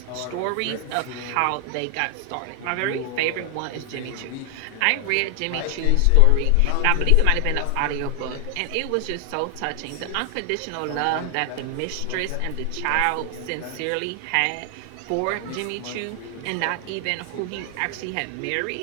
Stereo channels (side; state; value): both; different; correlation 0.00